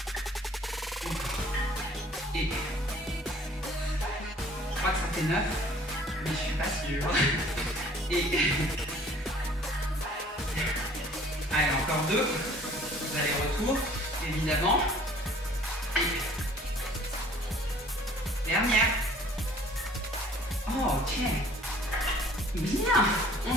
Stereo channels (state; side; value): normal; both; correlation 0.53